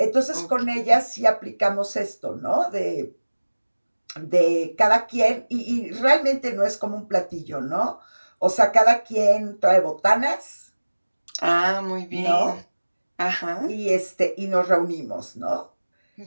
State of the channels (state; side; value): inverted; both; correlation -1.00